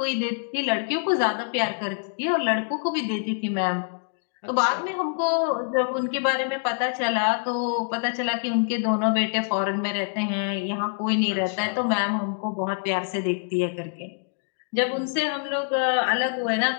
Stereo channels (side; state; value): right; silent; digital silence